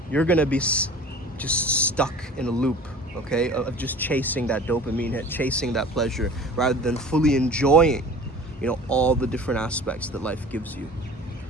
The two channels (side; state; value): both; normal; correlation 0.42